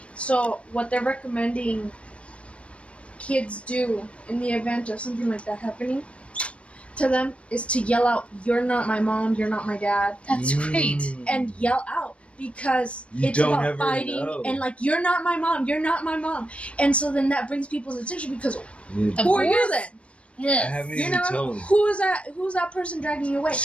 So what they're recommending kids do in the event of something like that happening to them is to yell out, "You're not my mom, you're not my dad." That's great. And yell out, because You it's don't about ever fighting know. and "You're not my mom, you're not my mom." And so then that brings people's attention, because Of who are you course. then? I Yes. haven't You even know, told him. who's that person dragging you away?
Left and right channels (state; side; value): late; right; 0.061 ms